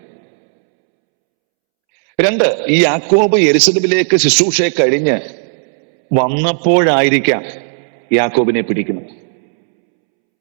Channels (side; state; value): left; silent; 71 dB below the other